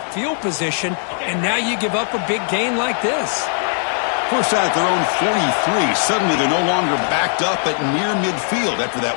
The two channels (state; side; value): silent; right; 67 dB below the other